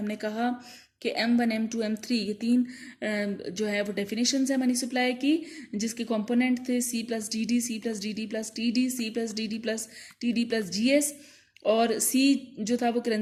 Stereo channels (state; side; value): identical; both; correlation 1.00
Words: कहा कि M1, M2, M3 ये 3 जो है वो डेफिनेशंस है मनी सप्लाई की, जिसके कंपोनेंट थे C+DD, C+DD+TD, C+DD+TD+GS और C जो था वो